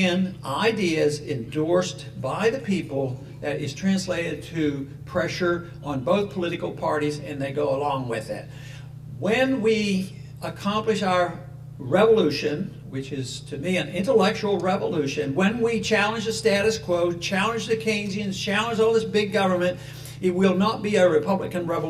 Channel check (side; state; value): both; identical; correlation 1.00